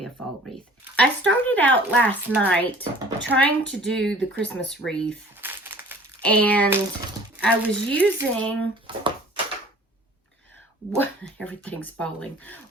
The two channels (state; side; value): normal; both; correlation 0.49